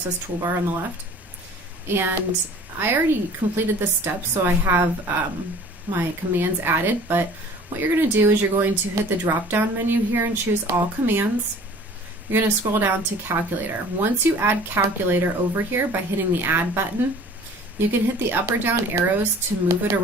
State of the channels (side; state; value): both; normal; correlation 0.47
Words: Toolbar on the left. And I already completed this step, so I have my commands added, but what you're going to do is you're going to hit the drop-down menu here and choose All Commands. You're going to scroll down to Calculator. Once you add Calculator over here by hitting the Add button, you can hit the up or down arrows to move it